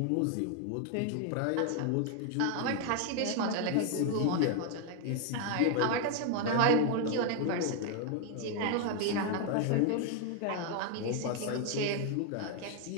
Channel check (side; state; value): both; different; correlation 0.01